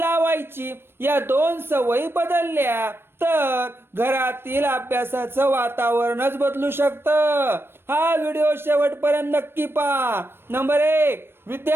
या 2 सवयी बदलल्या तर घरातील अभ्यासाचं वातावरणच बदलू शकतं. हा व्हिडिओ शेवटपर्यंत नक्की पहा. नंबर 1,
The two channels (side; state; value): left; late; 0.11 ms